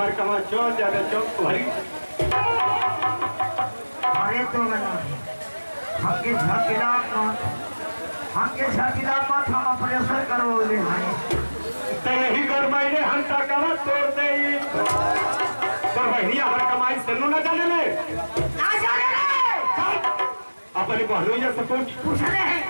कमा चौक ज्यादा चौक भरी अरे तो हमके झकिला मत हम ऑपरेशन करवले हैं तो यही कर मैंने हम ताकवा तोड़ दे तो बहनी हमारे कमाई सेलू न जाने ले अपनी बहनोइया से पूछ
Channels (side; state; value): both; inverted; correlation -1.00